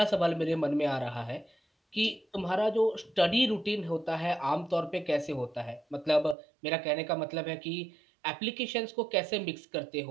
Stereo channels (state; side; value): drops out; left; at 6.4 s